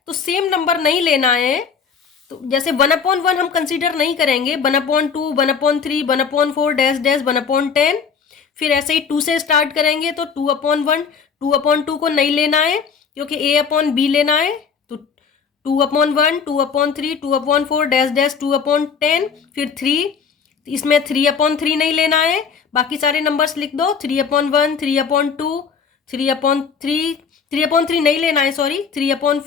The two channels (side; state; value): right; quieter; 6.2 dB